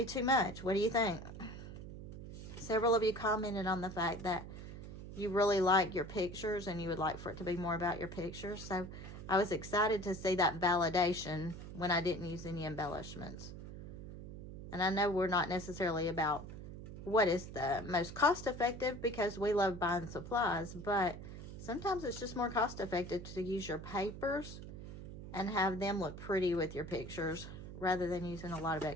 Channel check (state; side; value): noise; right; hum, 11 dB below the sound